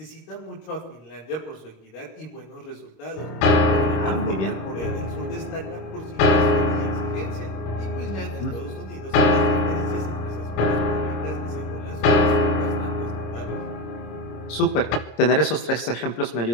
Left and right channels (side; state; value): right; late; 26 ms